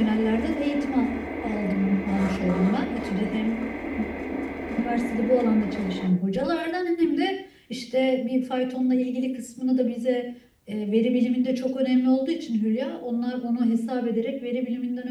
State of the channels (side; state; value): both; identical; correlation 1.00